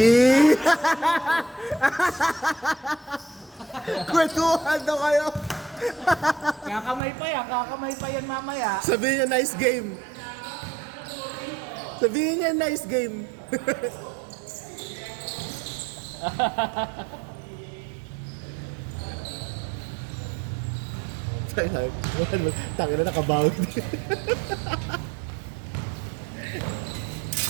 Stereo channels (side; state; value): left; drops out; at 7.0 s